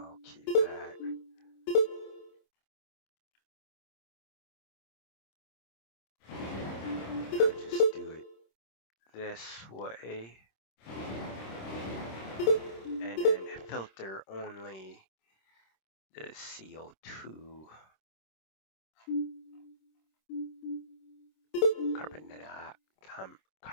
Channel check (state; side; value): late; right; 26 ms